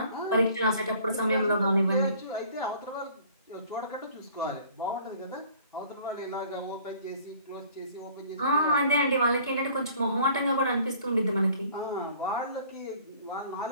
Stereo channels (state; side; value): inverted; both; correlation -0.53